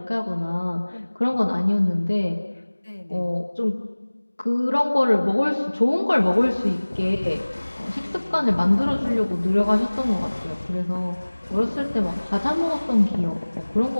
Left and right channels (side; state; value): both; inverted; correlation -1.00